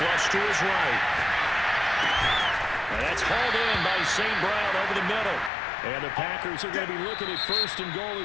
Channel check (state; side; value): drops out; right; at 5.5 s